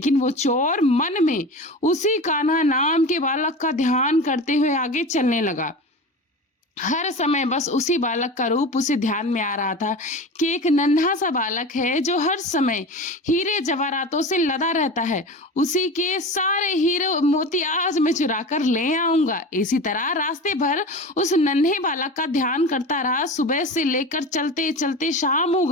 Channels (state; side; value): normal; both; correlation 0.31